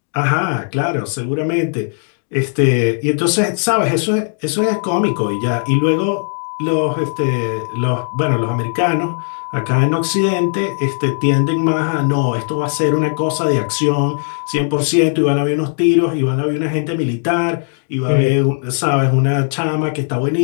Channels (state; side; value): silent; right; digital silence